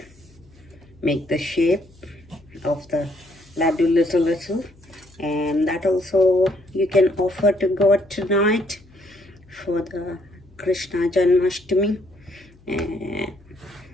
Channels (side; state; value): left; noise; hum, 27 dB below the sound